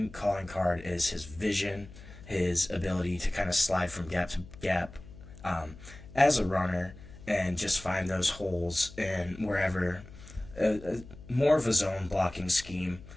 calling card is his vision, his ability to kind of slide from gap to gap as a runner and just find those holes in wherever, more of a zone blocking scheme.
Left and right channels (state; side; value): noise; left; hum, 18 dB below the sound